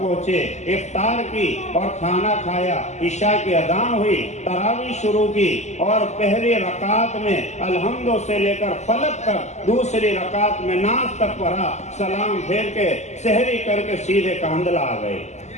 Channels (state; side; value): late; right; 0.33 ms